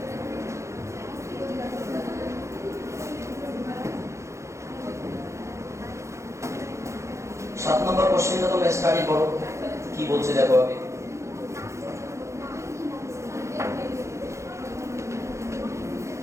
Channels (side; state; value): left; late; 0.14 ms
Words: 7 নম্বর কোশ্চেনটা তোমরা স্টাডি করো, কি বলছে দেখো আগে।